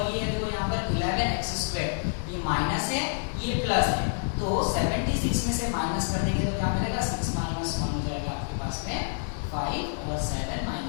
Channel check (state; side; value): silent; right; digital silence